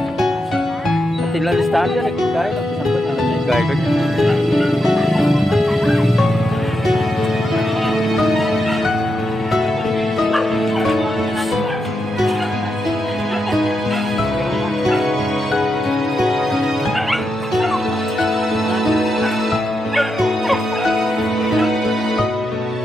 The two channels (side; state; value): both; normal; correlation 0.85